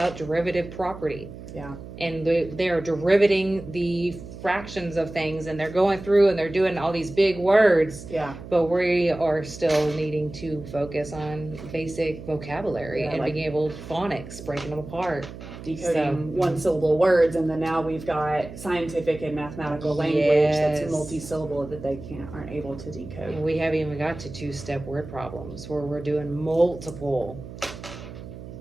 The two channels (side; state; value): right; noise; hum, 13 dB below the sound